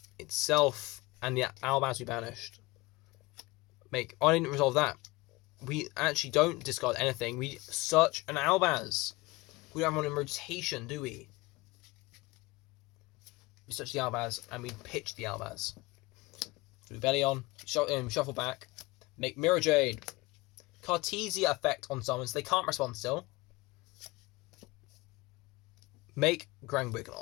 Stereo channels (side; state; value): right; quieter; 21.9 dB